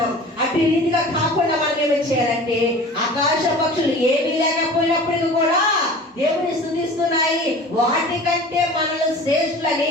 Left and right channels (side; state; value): both; normal; correlation 0.40